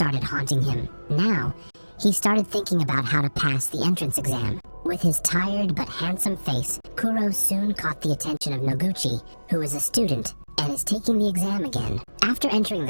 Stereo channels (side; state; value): both; inverted; correlation -1.00